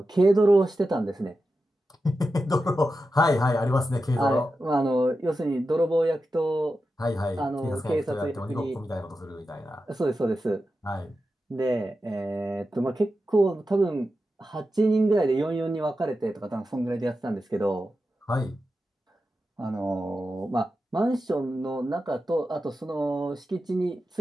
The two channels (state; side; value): normal; both; correlation 0.91